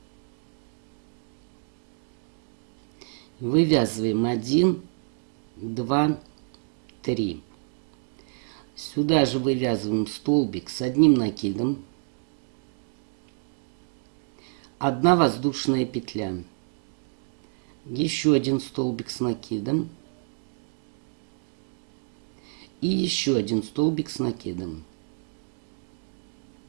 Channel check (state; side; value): silent; left; 59 dB below the other